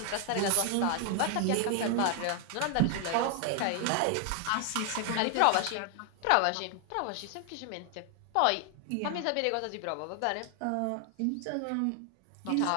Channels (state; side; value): different; both; correlation 0.00